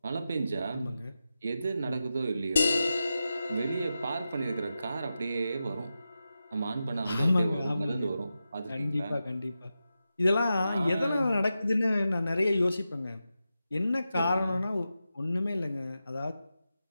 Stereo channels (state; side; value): inverted; both; correlation -0.91